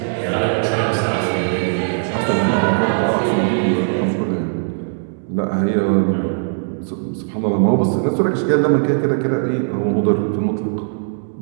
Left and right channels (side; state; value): left; silent; digital silence